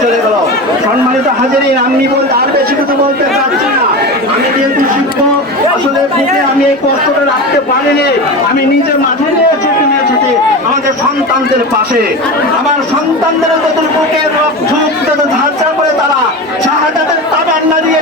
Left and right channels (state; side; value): normal; both; correlation 0.26